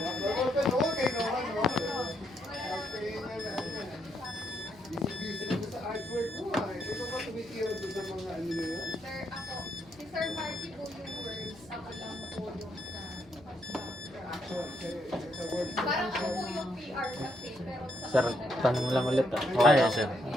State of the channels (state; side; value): noise; left; hum, 25 dB below the sound